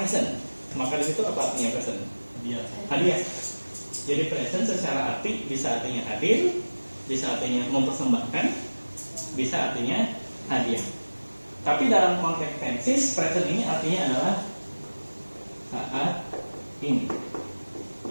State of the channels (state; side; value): inverted; both; correlation -1.00